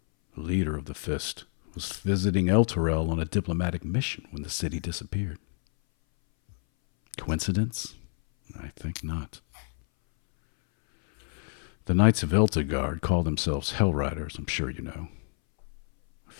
the leader of the Fist, was visiting Elturel on a diplomatic mission when the city disappeared. Coincidence? I think not. The Knights of Elturgard call themselves Hell Riders, I'm sure you know. A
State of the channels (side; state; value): right; silent; 59 dB below the other